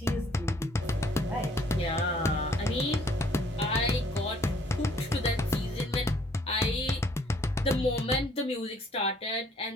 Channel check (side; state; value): both; normal; correlation 0.62